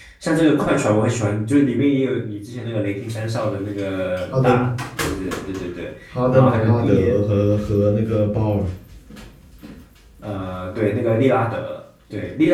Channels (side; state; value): both; identical; correlation 1.00